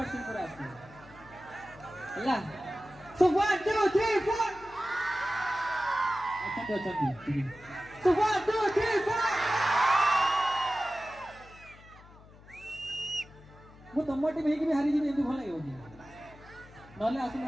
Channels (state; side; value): noise; left; hum, 22 dB below the sound